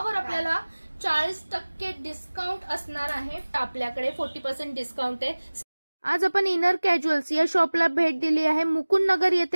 आपल्याला 40% डिस्काउंट असणार आहे. आपल्याकडे 40% डिस्काउंट आहे. आज आपण इनर कॅज्युअल्स या शॉपला भेट दिली आहे. मुकुंद नगर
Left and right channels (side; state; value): both; inverted; correlation -1.00